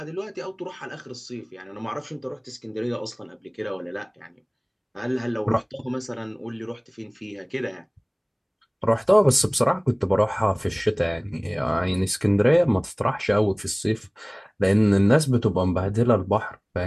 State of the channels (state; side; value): identical; both; correlation 1.00